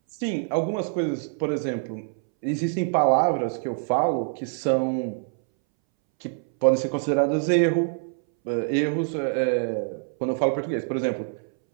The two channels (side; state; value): left; silent; 62 dB below the other